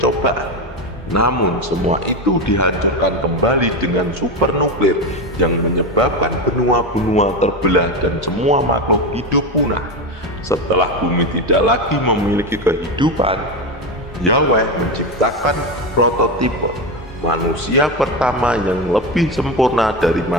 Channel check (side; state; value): both; normal; correlation 0.16